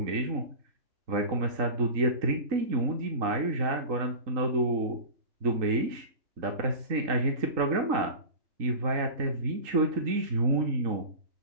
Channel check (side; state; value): left; late; 3.8 ms